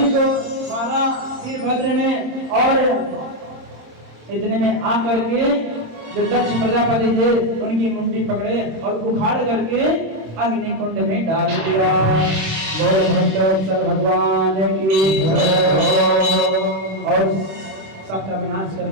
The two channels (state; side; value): late; left; 26 ms